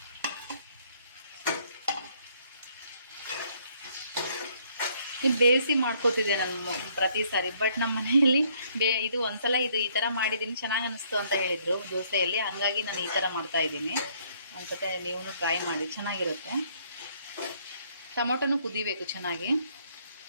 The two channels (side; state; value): both; inverted; correlation -0.66